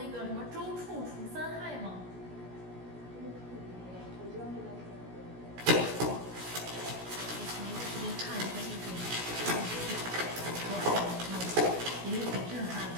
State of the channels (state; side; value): late; left; 17 ms